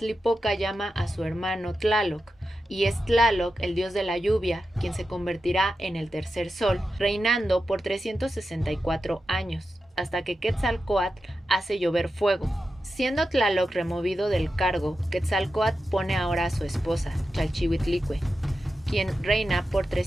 llama a su hermano Tlaloc, y es Tlaloc, el dios de la lluvia, quien se convertirá en el tercer sol, reinando por 364 años, hasta que Quetzalcóatl hace llover fuego. Siendo Tlaloc removido del cargo, Quetzalcóatl pone ahora a su esposa, Chalchihuitlicue, quien reina por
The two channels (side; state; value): both; normal; correlation 0.90